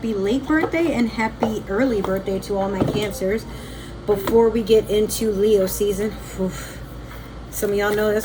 late birthday, and happy early birthday to all my Cancers. Before we get into Leo season, some of y'all know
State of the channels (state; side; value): identical; both; correlation 1.00